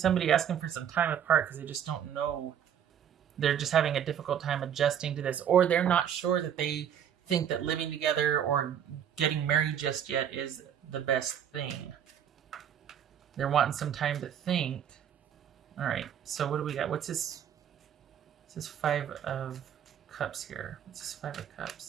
asking for some time apart because they just don't know. They're just having a difficult time adjusting to this, or they're not sure that they think that living together or getting married just yet is the best thing. They're wanting some time to think. All right, so what do we got? What's this? This is 5 of Cups here. What's this 5 of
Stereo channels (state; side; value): quieter; left; 9.1 dB